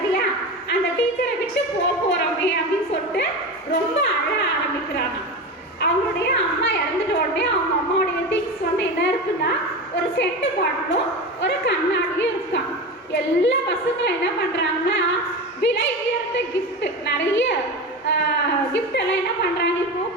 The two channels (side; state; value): both; normal; correlation 0.25